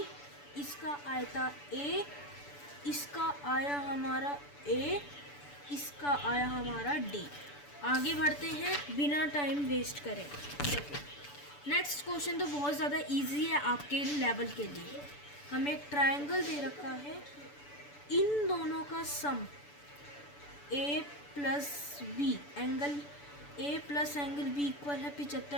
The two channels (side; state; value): right; late; 6.9 ms